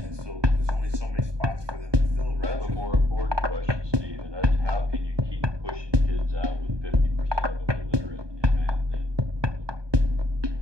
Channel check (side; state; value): left; late; 1.2 ms